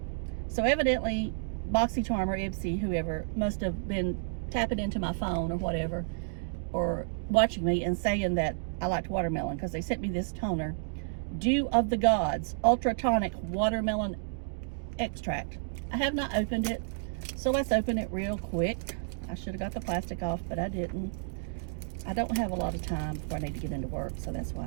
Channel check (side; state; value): left; silent; digital silence